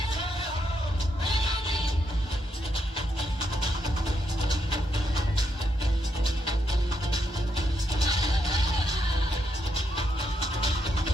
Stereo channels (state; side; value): normal; both; correlation 0.79